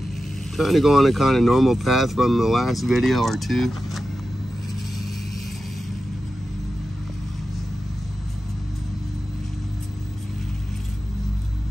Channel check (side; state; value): both; normal; correlation 0.92